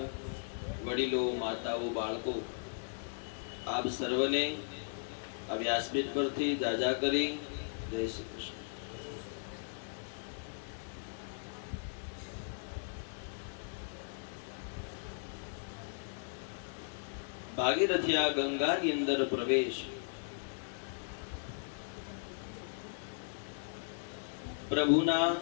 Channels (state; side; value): silent; right; 53 dB below the other